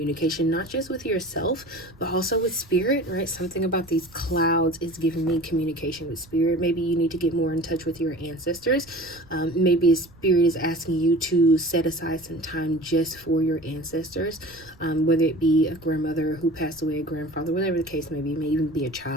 not just with yourself, but also with Spirit, right? Something about these clouds is giving me communication with Spirit. Maybe you need to get more in touch with your ancestors. Maybe Spirit is asking you to set aside some time just for your ancestors, whether it be a grandmother who passed away, a grandfather, whatever the case may be, may even be a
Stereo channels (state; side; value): noise; right; rumble, 25 dB below the sound